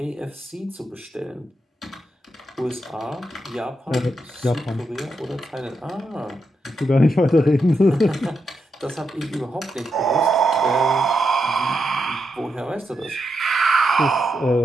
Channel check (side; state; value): both; normal; correlation 0.84